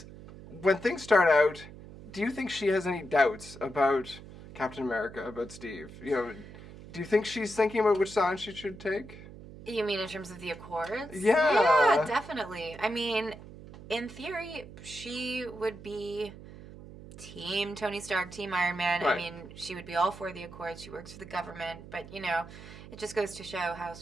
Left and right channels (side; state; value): right; noise; hum, 16 dB below the sound